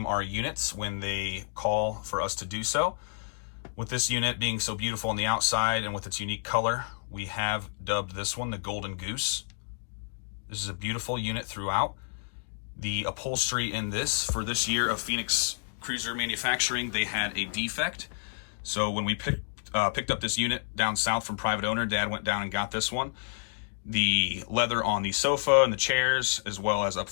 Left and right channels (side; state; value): right; silent; digital silence